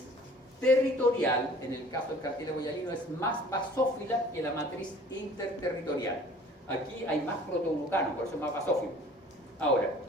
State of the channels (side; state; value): both; normal; correlation 0.50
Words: territorial, en el caso del cartílago hialino, es más basófila que la matriz interterritorial. Aquí hay más protoglucanos, por eso es más basófilo. Ahora,